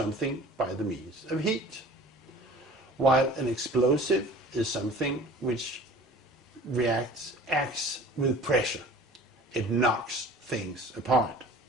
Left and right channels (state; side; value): normal; both; correlation 0.44